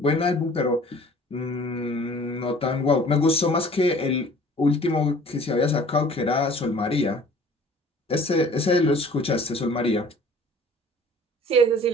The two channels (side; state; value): both; normal; correlation 0.50